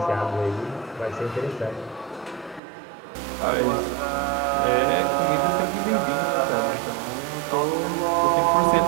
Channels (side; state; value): left; drops out; at 2.6 s